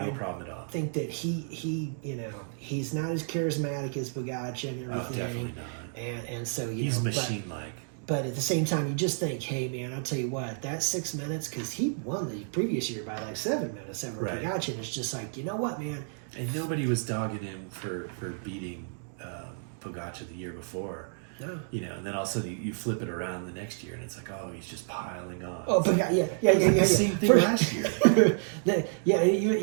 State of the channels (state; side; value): silent; left; digital silence